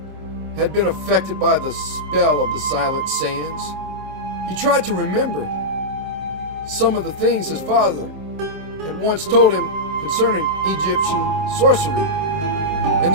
had been affected by the spell of the silent sands. He tried to remember some of the things his father had once told him concerning Egyptian sorcery and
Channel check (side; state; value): left; late; 26 ms